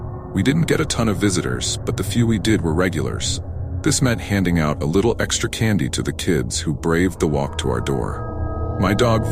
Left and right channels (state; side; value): identical; both; correlation 1.00